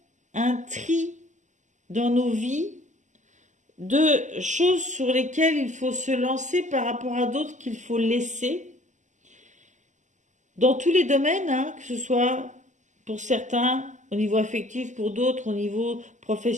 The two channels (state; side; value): late; left; 0.35 ms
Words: un tri dans nos vies de choses sur lesquelles il faut se lancer par rapport à d'autres qu'il faut laisser. Dans tous les domaines, que ce soit pour certains au niveau affectif, pour d'autres au niveau